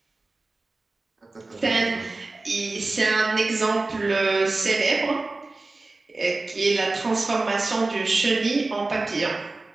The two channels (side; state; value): left; quieter; 3.3 dB